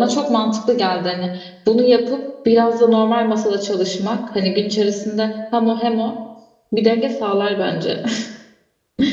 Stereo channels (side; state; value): both; identical; correlation 1.00